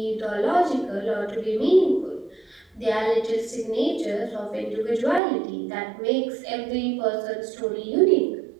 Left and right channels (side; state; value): left; drops out; at 5.2 s